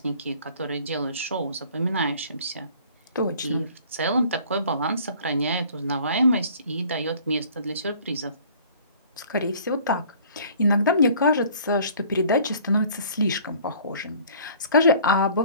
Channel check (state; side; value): inverted; both; correlation -0.52